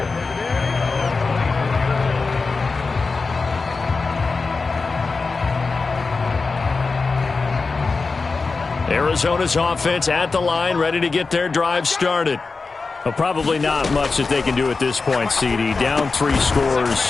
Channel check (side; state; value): right; quieter; 4.2 dB